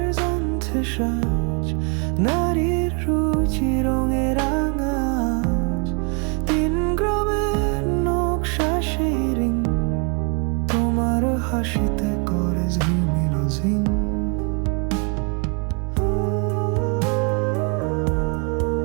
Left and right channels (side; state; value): left; quieter; 35.9 dB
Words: আনছে সাজ, নারীর রুচি রঙে রাঙাজ, 3 গ্রামের নকশা সেই রিং, তোমার হাসিতে করে ঝিলমিল ঝিং।